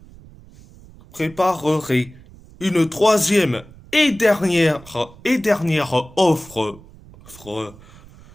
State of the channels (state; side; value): noise; right; rumble, 22 dB below the sound